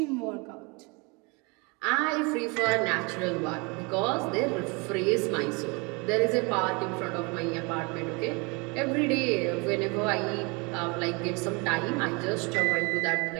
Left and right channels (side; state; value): left; quieter; 29.3 dB